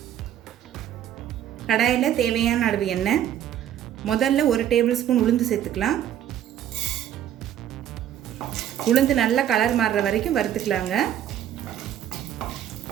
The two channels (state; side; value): quieter; left; 10.8 dB